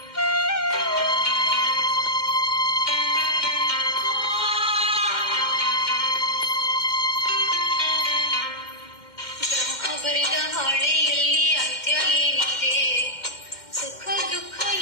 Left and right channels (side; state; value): right; late; 2.1 ms